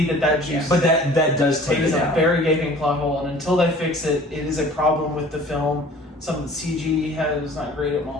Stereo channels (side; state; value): both; normal; correlation 0.48